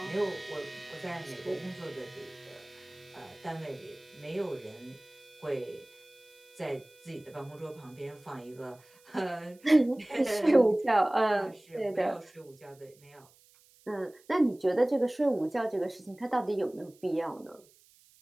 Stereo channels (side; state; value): right; noise; hiss, 28 dB below the sound